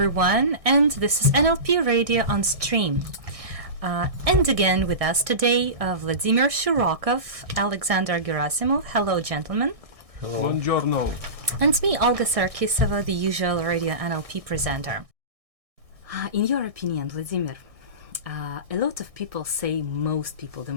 and this is NLP Radio on Stream. And again with us today, Vladimir Shirokov, Alexander Gerasimov. Hello gentlemen. Hello. Buongiorno. And me, Olga Sarkisova, the usual Radio NLP presenter. In your opinion, Vladimir, a lot of people say, most people, the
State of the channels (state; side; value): late; left; 1.6 ms